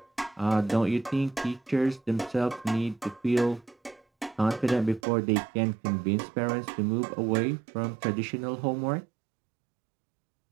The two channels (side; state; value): left; drops out; at 5.0 s